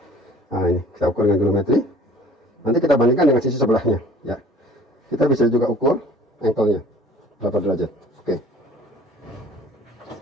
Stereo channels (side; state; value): both; normal; correlation 0.50